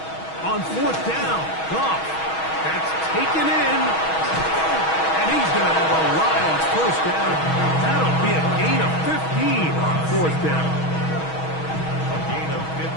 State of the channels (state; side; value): late; right; 6.3 ms